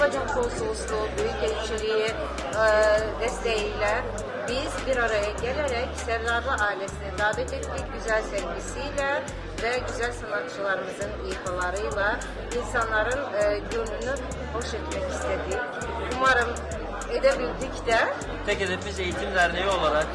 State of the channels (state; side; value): identical; both; correlation 1.00